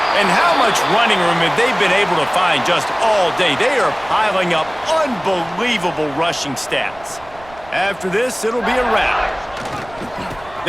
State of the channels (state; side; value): noise; right; rumble, 22 dB below the sound